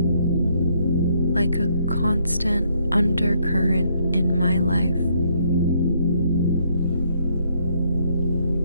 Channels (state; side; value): inverted; both; correlation -0.70